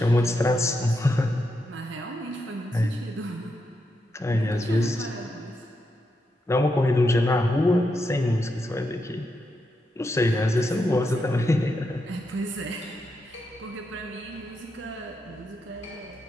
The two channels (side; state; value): both; normal; correlation 0.83